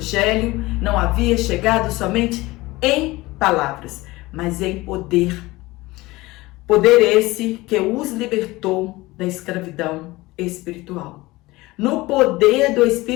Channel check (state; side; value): quieter; right; 20.3 dB